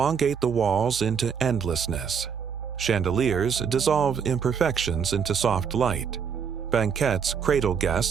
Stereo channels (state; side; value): quieter; left; 6.8 dB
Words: the walls into endlessness. Chandeliers dissolve imperfections into soft light. Banquettes cradle